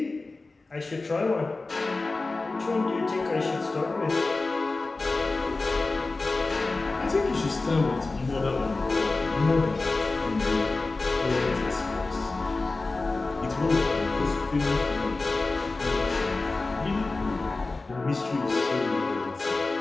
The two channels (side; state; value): right; quieter; 3.5 dB